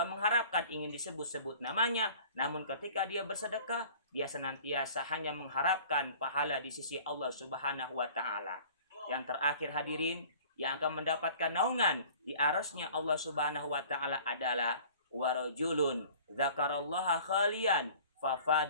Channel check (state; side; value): inverted; both; correlation -0.47